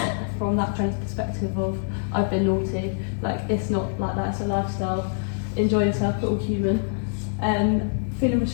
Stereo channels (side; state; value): right; silent; digital silence